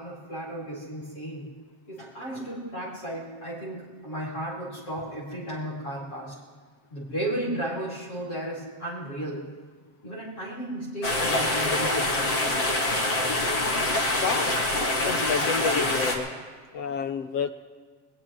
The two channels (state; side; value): late; right; 7.6 ms